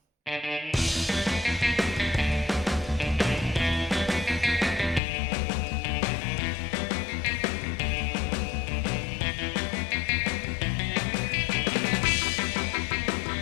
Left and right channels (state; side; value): drops out; right; at 5.0 s